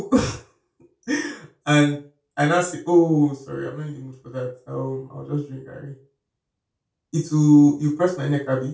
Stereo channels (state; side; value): identical; both; correlation 1.00